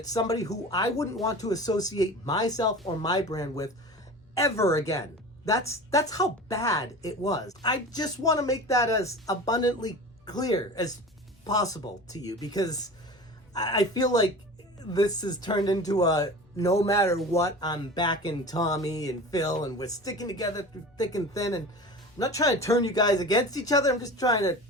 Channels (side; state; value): both; normal; correlation 0.35